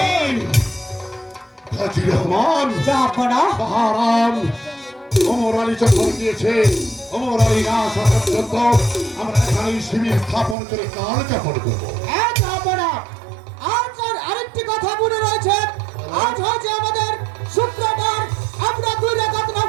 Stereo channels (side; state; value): left; drops out; at 10.6 s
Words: হাজী রহমান জাহাপনা বাহারাম ওমর আলী যখন দিয়েছে ওমর আলী না আসা পর্যন্ত আমরা এখানে শিবির স্থাপন করে কাল যাপন করবো। জাহাপনা আজ আর আরেকটি কথা মনে রয়েছে। আজ হচ্ছে আমাদের শুক্রবার, আমরা 2 রাকাত